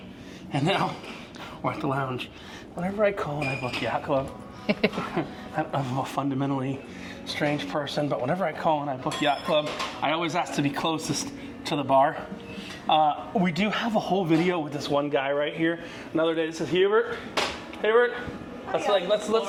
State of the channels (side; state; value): both; identical; correlation 1.00